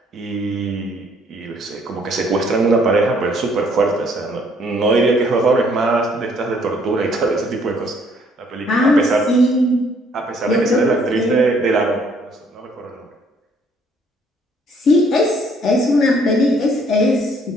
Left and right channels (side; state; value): both; normal; correlation 0.64